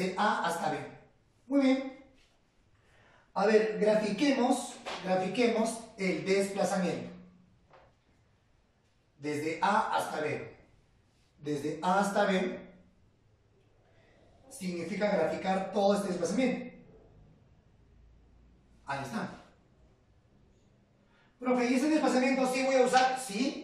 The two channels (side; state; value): both; identical; correlation 1.00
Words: A hasta B. Muy bien. A ver, grafiquemos el desplazamiento. Desde A hasta B. Desde A hasta B significa graficar todo este desplazamiento. Ahí está. Profe, ¿y ese desplazamiento sí voy a usar?